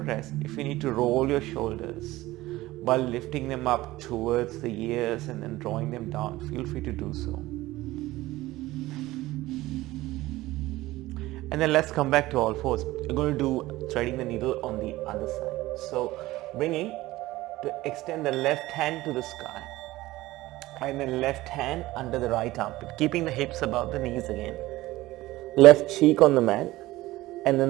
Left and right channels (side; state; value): left; quieter; 17.8 dB